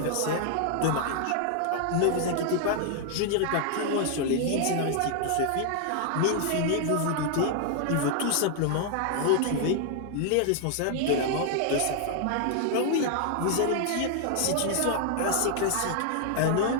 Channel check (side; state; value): both; different; correlation 0.00